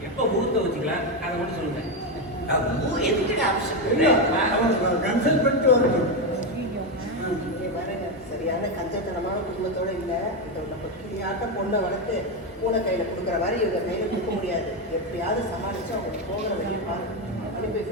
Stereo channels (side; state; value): both; normal; correlation 0.09